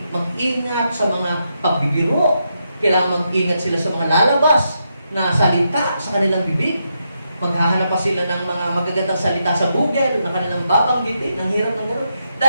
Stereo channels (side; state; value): both; inverted; correlation -0.82